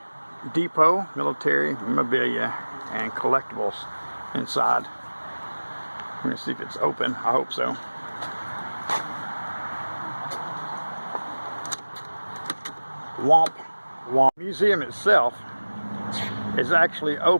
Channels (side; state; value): both; inverted; correlation -1.00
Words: Depot, military memorabilia and collectibles inside. Let me see if it's open. I hope so. Womp Womp. The museum itself is actually